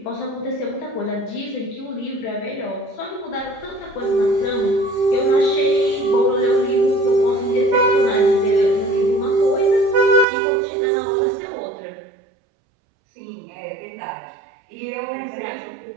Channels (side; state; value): left; drops out; at 10.2 s